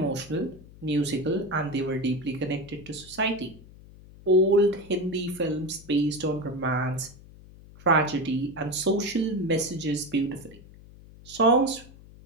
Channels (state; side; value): noise; left; hum, 21 dB below the sound